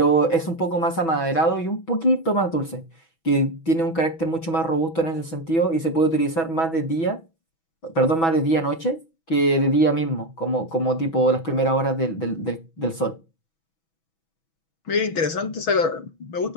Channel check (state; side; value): late; right; 6.1 ms